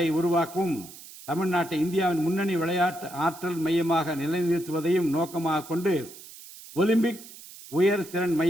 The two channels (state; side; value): noise; right; hiss, 17 dB below the sound